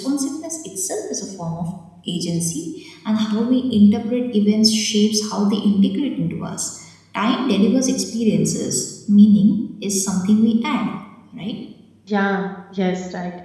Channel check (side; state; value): both; identical; correlation 1.00